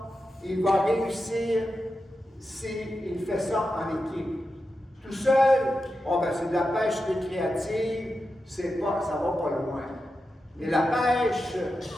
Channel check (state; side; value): normal; both; correlation 0.90